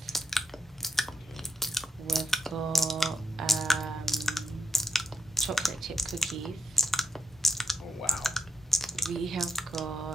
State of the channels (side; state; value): both; normal; correlation 0.81